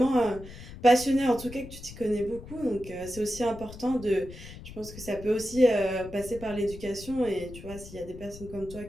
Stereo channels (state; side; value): noise; left; rumble, 14 dB below the sound